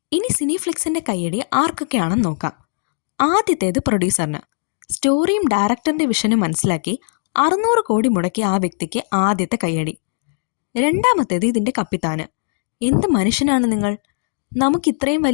ഇനി സിനിഫ്ലിക്സിന്റെ കയ്യടി ആർക്കൊക്കെയാണെന്ന് നോക്കാം. ആദ്യത്തേത് പ്രൊഡ്യൂസറിന്. സ്റ്റോറിയും ഡയറക്ടറിന്റെ വിഷനും മനസ്സിലാക്കി 600 കോടി മുടക്കിയ ആ വ്യക്തിക്ക് ആദ്യത്തെ കയ്യടി. രണ്ടാമത്തേത് ഇതിന്റെ കപ്പിത്താന്. എന്ത് മനുഷ്യനാണ് നിങ്ങൾ! നമുക്ക് ഇത്രയും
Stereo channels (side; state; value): right; silent; digital silence